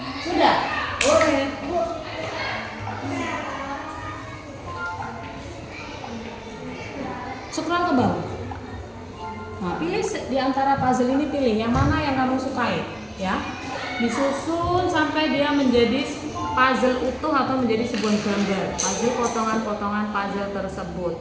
Sudah? Boleh. Scroll ke bawah. Nah, pilih di antara puzzle ini, pilih yang mana yang kamu sukai, ya. Disusun sampai dia menjadi puzzle utuh atau menjadi sebuah gambar. Puzzle potongan-potongan puzzle tersebut.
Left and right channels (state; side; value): identical; both; correlation 1.00